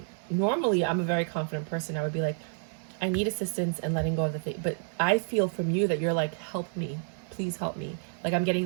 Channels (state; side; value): silent; left; digital silence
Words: Normally, I'm a very confident person. I would be like, I need assistance and letting go of the thing. But I feel from you that you're like, help me, please help me. Like, I'm getting